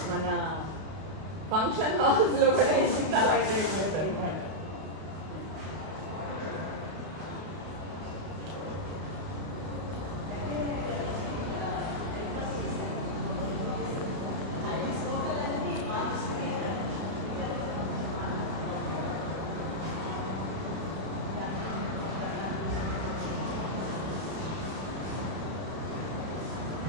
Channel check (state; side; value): late; left; 32 ms